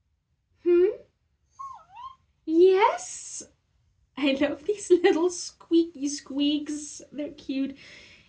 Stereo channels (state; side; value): identical; both; correlation 1.00